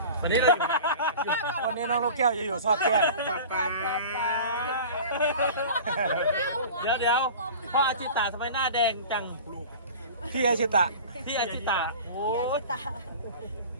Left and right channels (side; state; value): both; inverted; correlation -0.38